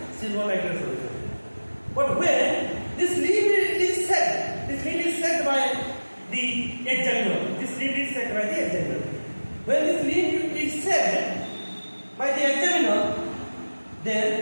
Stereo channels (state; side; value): inverted; both; correlation -1.00